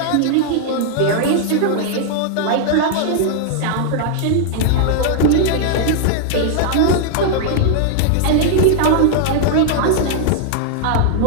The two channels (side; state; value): both; different; correlation 0.00